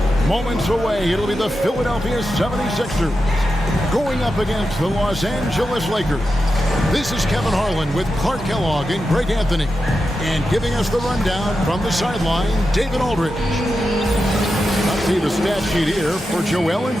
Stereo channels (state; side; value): normal; both; correlation 0.90